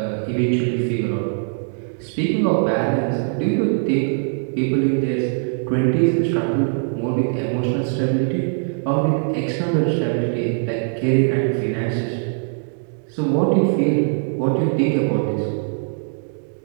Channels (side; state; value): left; silent; digital silence